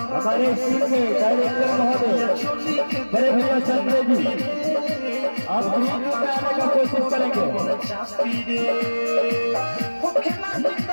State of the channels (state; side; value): inverted; both; correlation -1.00